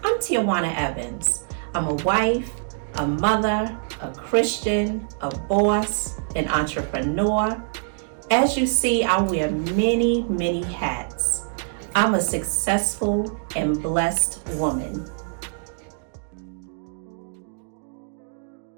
I'm Tijuana Evans. I'm a wife, a mother, a Christian, a boss, an entrepreneur. As you see, I wear many, many hats. I'm a successful and blessed woman.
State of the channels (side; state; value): left; silent; digital silence